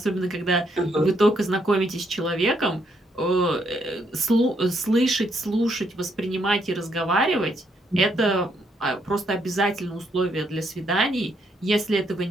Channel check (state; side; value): normal; both; correlation 0.74